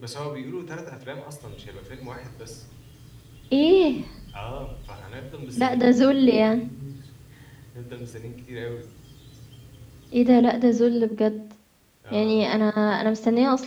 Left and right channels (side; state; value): both; identical; correlation 1.00